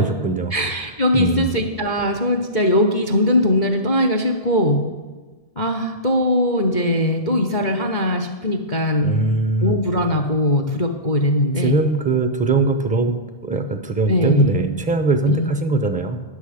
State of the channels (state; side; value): late; right; 1.7 ms